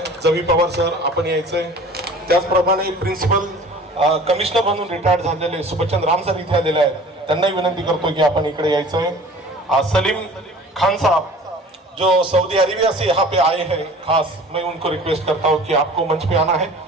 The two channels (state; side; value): normal; both; correlation 0.45